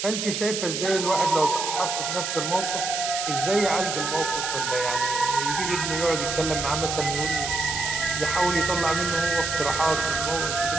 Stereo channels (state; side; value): noise; right; hiss, 3 dB below the sound